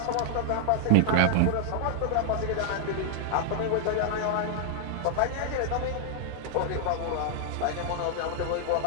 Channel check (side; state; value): both; different; correlation -0.01